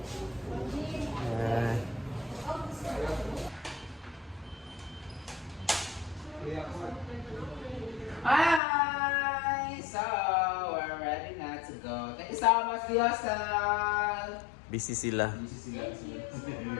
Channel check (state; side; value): drops out; right; at 8.6 s